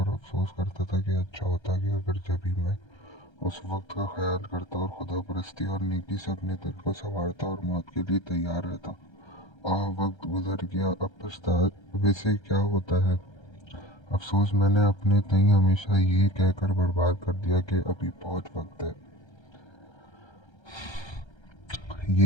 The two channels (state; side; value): late; right; 1.3 ms